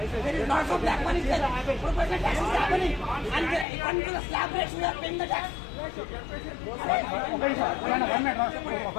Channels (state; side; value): drops out; right; at 3.7 s